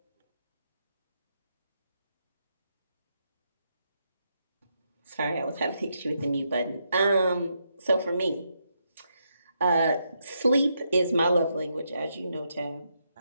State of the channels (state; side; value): inverted; both; correlation -0.80